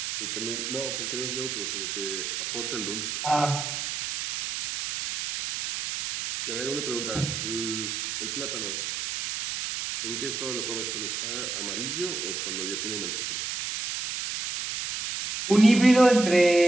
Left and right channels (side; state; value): right; noise; hiss, 4 dB below the sound